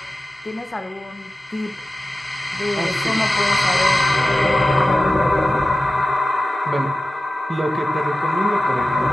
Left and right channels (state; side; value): normal; both; correlation 0.94